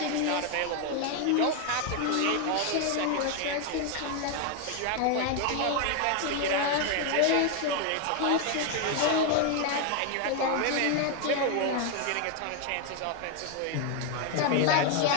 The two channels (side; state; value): both; different; correlation 0.01